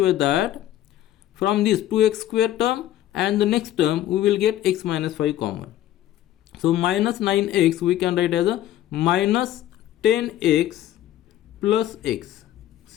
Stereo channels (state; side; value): quieter; right; 13.0 dB